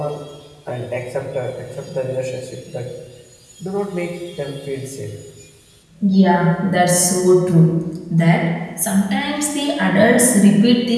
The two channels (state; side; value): identical; both; correlation 1.00